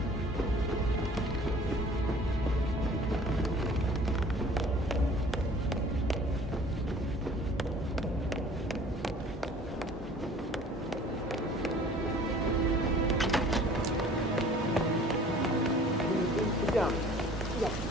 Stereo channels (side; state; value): both; normal; correlation 0.50